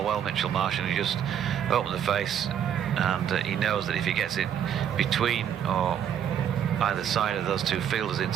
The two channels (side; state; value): left; quieter; 9.2 dB